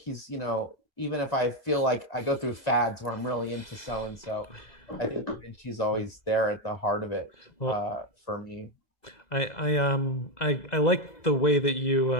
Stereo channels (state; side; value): late; right; 2.0 ms